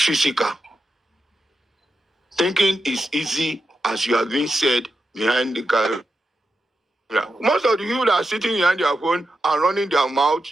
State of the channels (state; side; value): normal; both; correlation 0.88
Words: Thinking is easy, as you have been said, behind the camera. Most of the people that are sitting behind their phone and running their mouth,